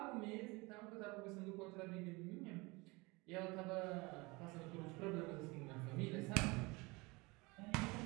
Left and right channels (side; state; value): left; quieter; 24.8 dB